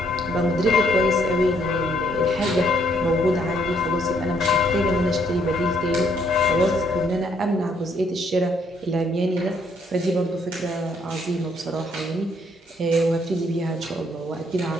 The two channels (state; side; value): normal; both; correlation 0.69